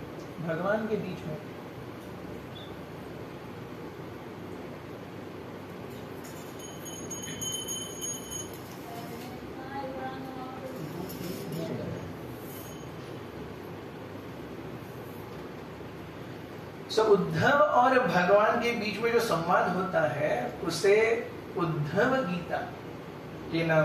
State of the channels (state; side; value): identical; both; correlation 1.00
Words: भगवान के बीच में उद्धव और भगवान के बीच में जो संवाद होता है उसे उद्धव गीता के